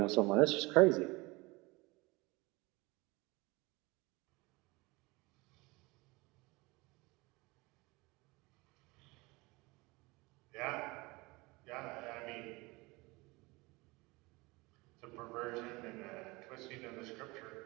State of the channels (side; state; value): left; quieter; 23.8 dB